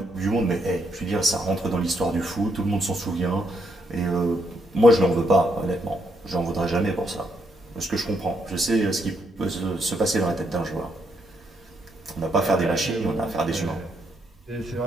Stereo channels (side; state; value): both; normal; correlation 0.76